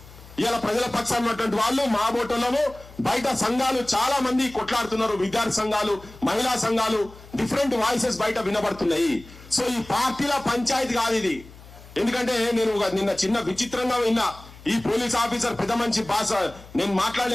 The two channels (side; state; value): left; noise; hum, 20 dB below the sound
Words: ఇలా ప్రజల పక్షాన ఉన్నటువంటి వాళ్ళు మా బోటోళ్ళము బయట సంఘాలు చాలా మంది కొట్లాడుతున్నారు. విద్యార్థి సంఘాలు, మహిళా సంఘాలు, డిఫరెంట్ వాయిసెస్ బయట వినబడుతున్నాయి. సో ఈ పార్టీల పంచాయతీ కాదు ఇది. ఎందుకంటే నేను నిన్న చిన్న విచిత్రంగా విన్నా, ఈ పోలీస్ ఆఫీసర్ పెద్ద మంచి భాష నేను